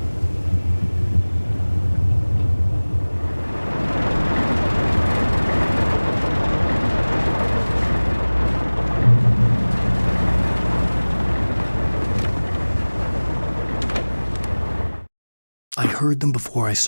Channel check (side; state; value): both; inverted; correlation -1.00